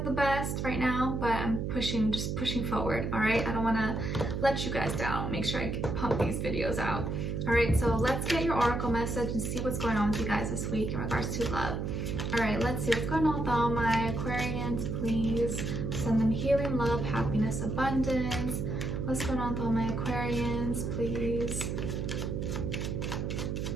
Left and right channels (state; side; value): noise; right; hum, 2 dB below the sound